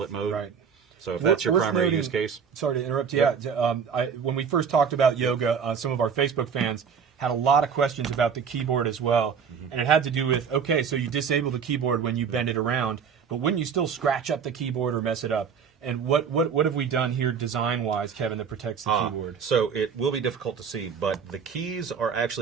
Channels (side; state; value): left; quieter; 6.7 dB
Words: mode. Right. So if that's your primary use case. Sorry to interrupt you. When we first talked about Yoga, some of our Facebook fans had a lot of questions about the keyboard as well. And it had to do with, okay, so you disable the keyboard when you bend it around, but wouldn't you still scratch up the keyboard or mess it up? And what have we done here design-wise, Kevin, that protects the keyboard? So it will be difficult to see, but the keys are